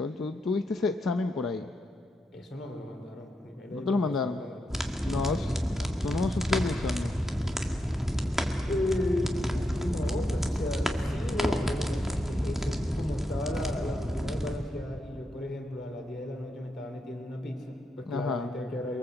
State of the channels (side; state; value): both; normal; correlation 0.83